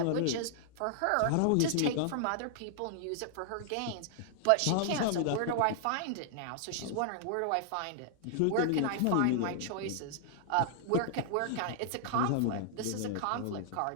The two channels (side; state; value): both; different; correlation -0.01